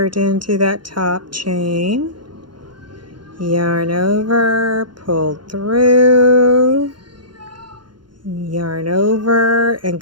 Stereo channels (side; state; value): left; late; 0.72 ms